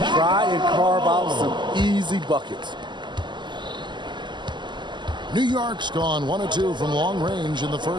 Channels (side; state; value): left; late; 0.22 ms